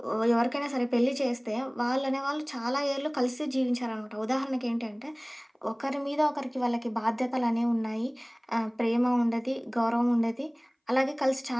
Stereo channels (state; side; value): identical; both; correlation 1.00